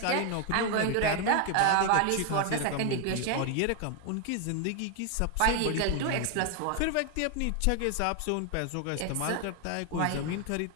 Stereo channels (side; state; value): both; different; correlation 0.00